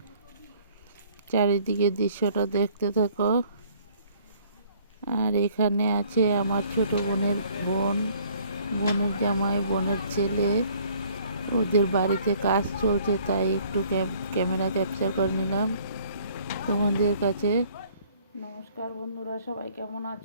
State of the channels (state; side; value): inverted; both; correlation -0.58